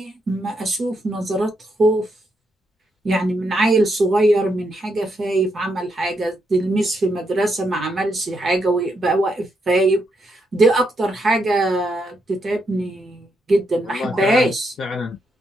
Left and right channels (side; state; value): both; normal; correlation 0.80